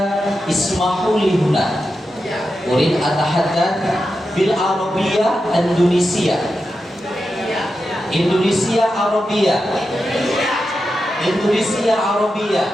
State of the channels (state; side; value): normal; both; correlation 0.89